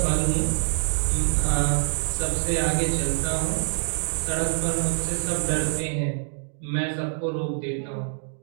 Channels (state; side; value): silent; left; digital silence